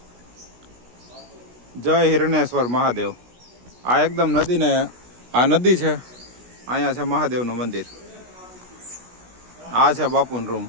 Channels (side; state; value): left; late; 16 ms